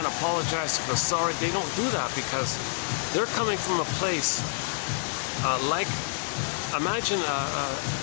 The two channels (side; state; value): right; silent; digital silence